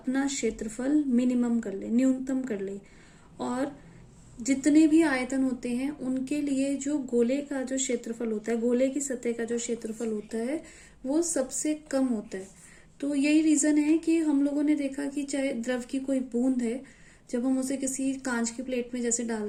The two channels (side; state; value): both; identical; correlation 1.00